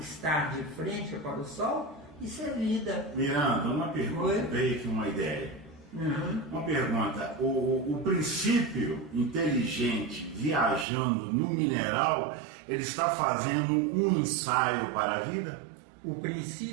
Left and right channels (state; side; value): drops out; left; at 10.9 s